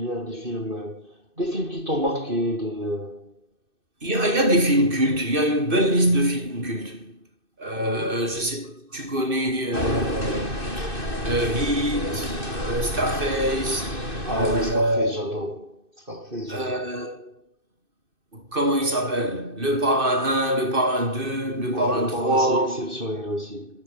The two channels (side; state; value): left; late; 2.6 ms